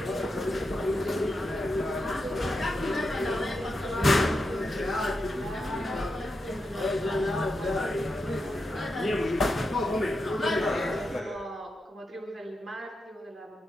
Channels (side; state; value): both; normal; correlation 0.87